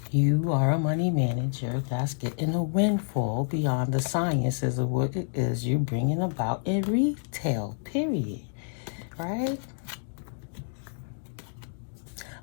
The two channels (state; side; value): silent; right; digital silence